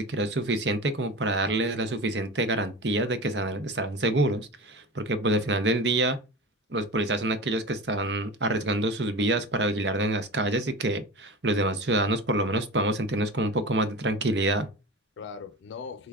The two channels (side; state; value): both; normal; correlation 0.31